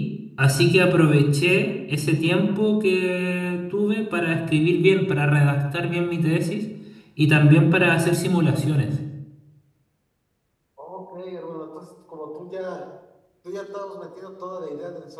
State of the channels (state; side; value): identical; both; correlation 1.00